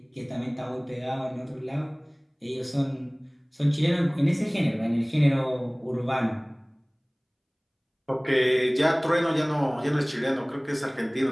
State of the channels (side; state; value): both; identical; correlation 1.00